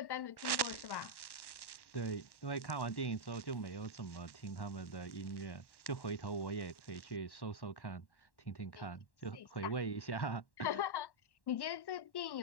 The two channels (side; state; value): right; late; 1.1 ms